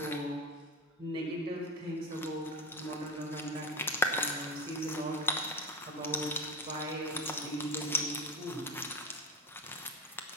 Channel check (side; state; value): both; normal; correlation 0.19